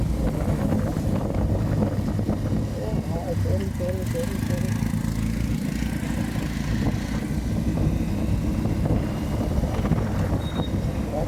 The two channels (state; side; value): identical; both; correlation 1.00